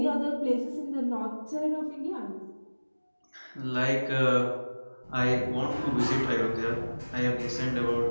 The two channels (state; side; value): inverted; both; correlation -1.00